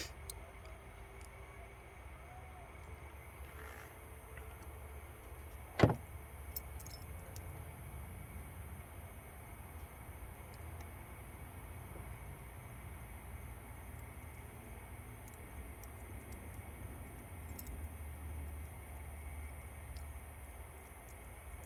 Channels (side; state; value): both; identical; correlation 1.00